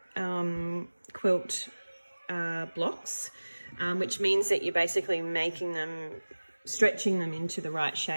quilt blocks, which means that you're basically making them, stretching them into the right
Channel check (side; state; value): both; inverted; correlation -1.00